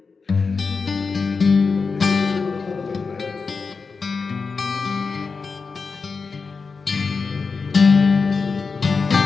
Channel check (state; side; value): quieter; right; 4.8 dB